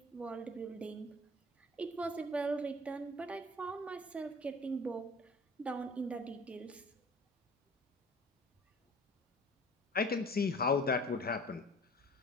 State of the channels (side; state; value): both; normal; correlation 0.46